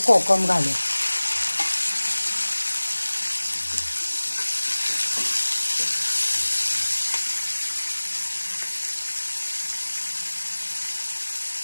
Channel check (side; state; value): both; inverted; correlation -1.00